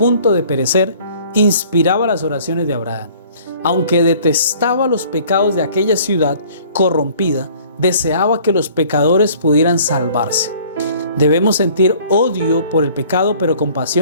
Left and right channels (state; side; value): inverted; both; correlation -0.53